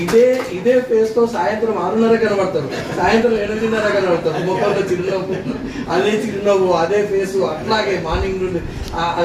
ఇదే ఫేస్తో సాయంత్రం 6:30 కనబడతారు, సాయంత్రం 8:30 కనబడతారు. ముఖంలో చిరునవ్వు, అదే చిరునవ్వు, అదే ఫేసు, అట్లాగే మార్నింగ్ నుండి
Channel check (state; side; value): identical; both; correlation 1.00